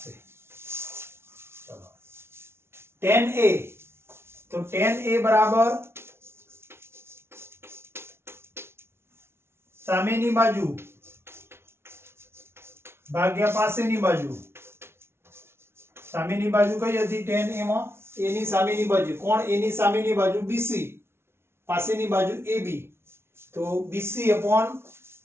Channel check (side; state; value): left; late; 0.12 ms